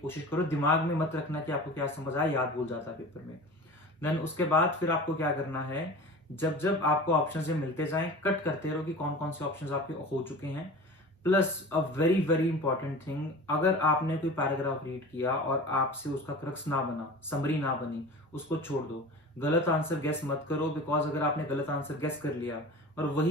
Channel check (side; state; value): both; normal; correlation 0.36